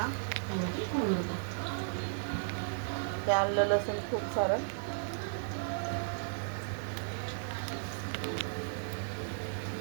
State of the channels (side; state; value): left; silent; 54 dB below the other